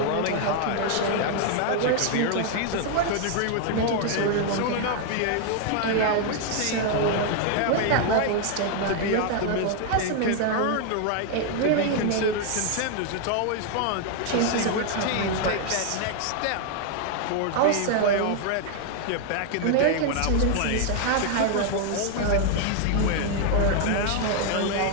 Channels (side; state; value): both; different; correlation 0.00